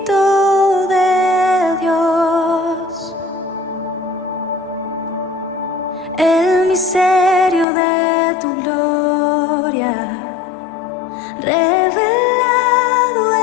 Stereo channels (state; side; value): drops out; right; at 7.7 s